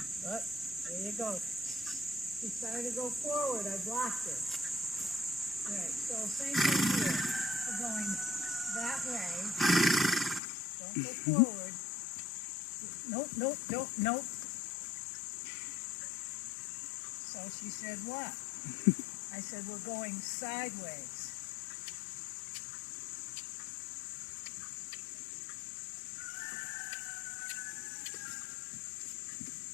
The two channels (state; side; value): drops out; right; at 10.4 s